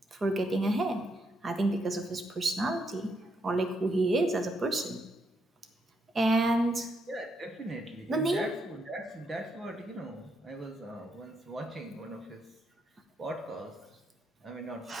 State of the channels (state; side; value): normal; both; correlation 0.78